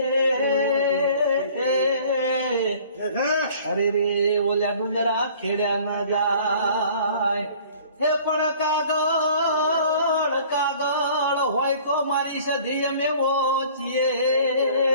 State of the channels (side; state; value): both; inverted; correlation -0.51